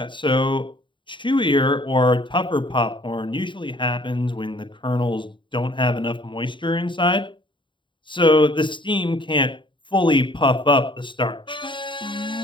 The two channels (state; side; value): late; right; 0.23 ms